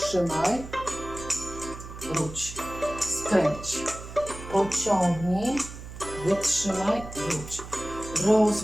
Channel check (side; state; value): right; noise; hum, 12 dB below the sound